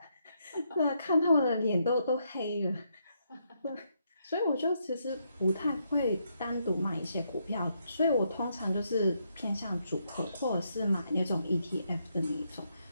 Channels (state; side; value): inverted; both; correlation -0.78